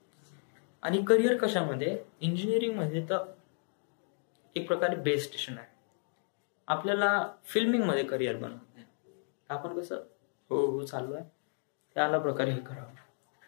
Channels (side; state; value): right; silent; 55 dB below the other